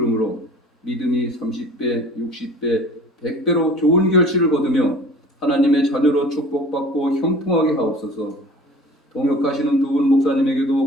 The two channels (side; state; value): both; normal; correlation 0.44